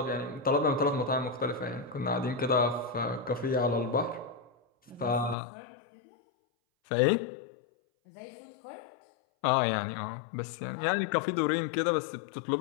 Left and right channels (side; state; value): right; drops out; at 5.4 s